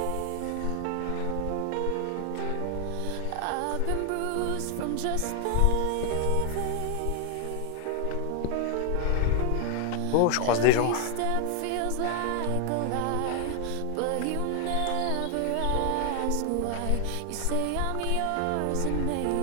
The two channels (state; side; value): different; both; correlation 0.00